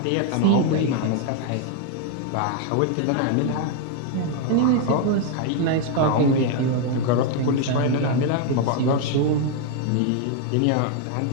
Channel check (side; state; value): both; different; correlation 0.00